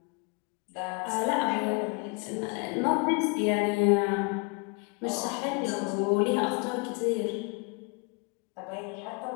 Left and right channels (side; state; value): right; quieter; 32.9 dB